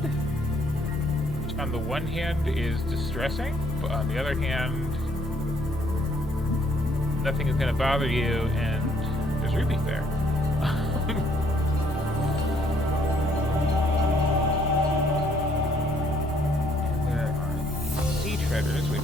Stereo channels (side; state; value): both; normal; correlation 0.66